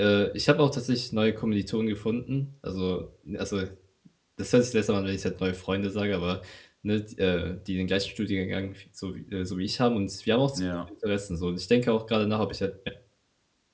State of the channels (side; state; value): both; identical; correlation 1.00